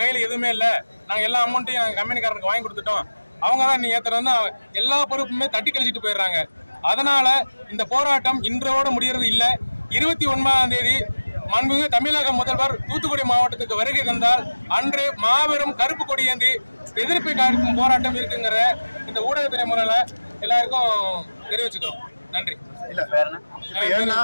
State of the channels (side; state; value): both; inverted; correlation -1.00